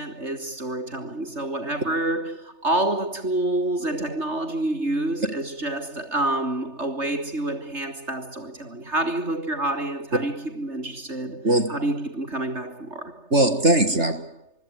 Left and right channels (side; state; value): left; late; 3.3 ms